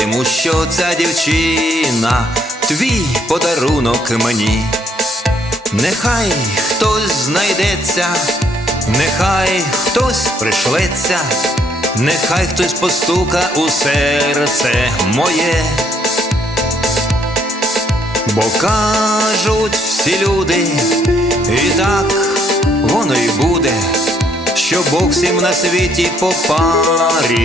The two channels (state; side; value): normal; both; correlation 0.69